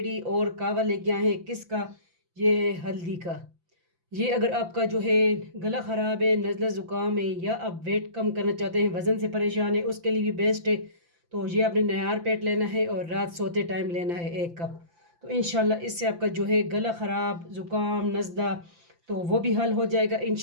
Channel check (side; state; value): left; late; 5.9 ms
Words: और कावा लेके आए हैं। किसका? ये है हल्दी का। ये अगर आपका जो है गला ख़राब है, नज़ला ज़ुकाम है, या आप वेट कम करना चाहते हैं, वज़न से परेशान है, उसके लिए भी बेस्ट है। तो ये आपने नयार पेट लेना है और रात सोते टाइम लेना है 1 कप। तो इंशाल्लाह इससे आपका जो है गला ख़राब, ज़ुकाम, नज़ला तो वो भी हल हो जाएगा